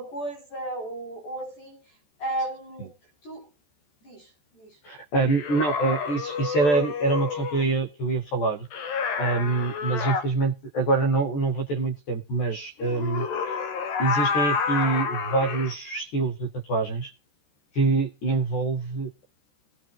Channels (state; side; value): late; right; 14 ms